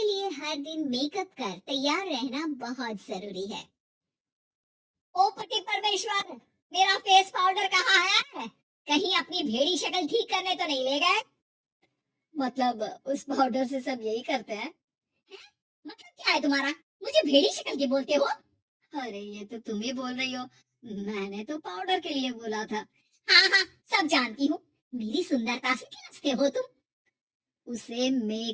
लिए हर दिन मेकअप कर तैयार रहना बहुत जरूरी है। ओ पति परमेश्वर, मेरा फेस पाउडर कहाँ है? कहीं अपनी भेड़ी शक्ल ठीक करने तो नहीं ले गए? मतलब उस पाउडर से सब यही करते हैं? मतलब क्या है तुम्हारा? मुझे भेड़ी शक्ल की बोलते हो? अरे ये तो तुम ही बोल रही हो, मैंने तो पाउडर के लिए बोला था। हाँ हाँ, सब जानती हूँ। मेरी सुंदरता से खिलचते हो तुम। उसे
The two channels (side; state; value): both; identical; correlation 1.00